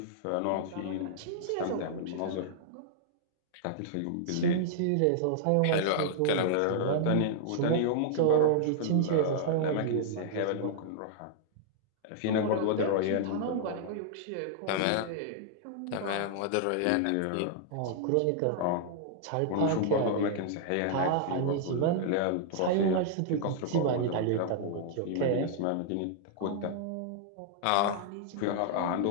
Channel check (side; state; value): both; different; correlation -0.01